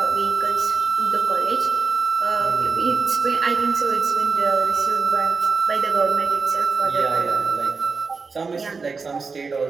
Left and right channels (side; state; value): left; quieter; 4.7 dB